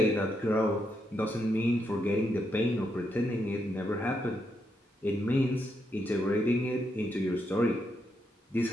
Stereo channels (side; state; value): both; normal; correlation 0.80